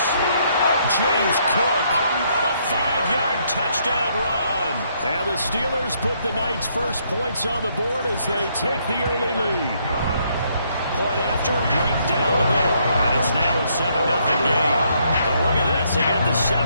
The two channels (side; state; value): both; inverted; correlation -0.71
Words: James Cook, a 5-yard touchdown run. And the Steelers put the night's first points on the board as they take the early lead. Point after, right down the middle. And it's now a 7-0 game. So look at this. They got the